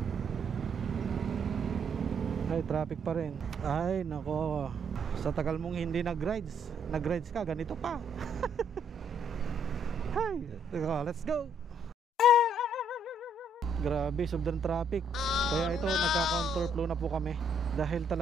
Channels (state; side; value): normal; both; correlation 0.69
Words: Ay, traffic pa rin. Ay, nako. Sa tagal mong hindi nag-rides ka, ganito pa. Hay, let's go. Grabe, sobrang traffic. Kaya ito, nagka-counterflow na po kami. Dahil